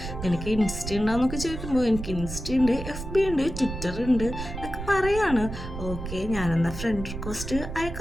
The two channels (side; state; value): right; noise; rumble, 8 dB below the sound